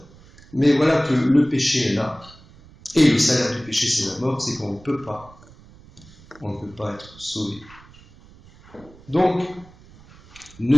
mais voilà que le péché est là, et le salaire du péché c'est la mort, c'est qu'on ne peut pas. On ne peut pas être sauvé. Donc, ne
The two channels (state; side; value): noise; right; rumble, 24 dB below the sound